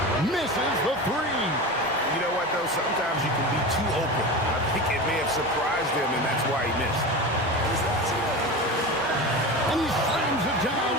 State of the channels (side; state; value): both; normal; correlation 0.27